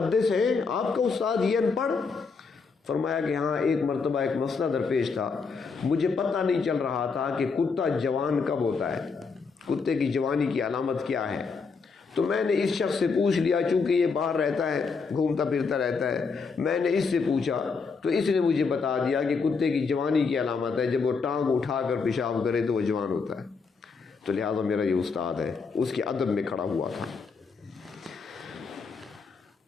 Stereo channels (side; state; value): right; quieter; 4.9 dB